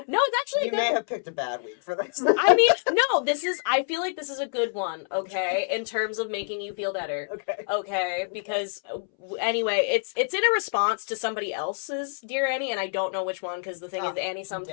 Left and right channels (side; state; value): right; silent; 60 dB below the other